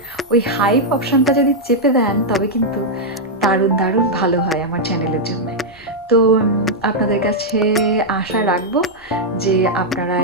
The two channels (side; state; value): both; normal; correlation -0.04